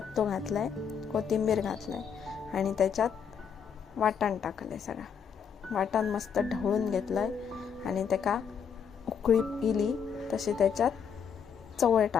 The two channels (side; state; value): right; quieter; 7.1 dB